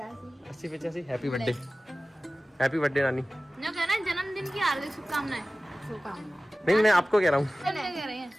80-85। हैप्पी बर्थडे, हैप्पी बर्थडे नानी। जो कहना है जन्मदिन की हार्दिक शुभकामनाएं। नहीं मैं आपको कह रहा हूँ। कह रहे हैं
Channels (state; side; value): normal; both; correlation 0.96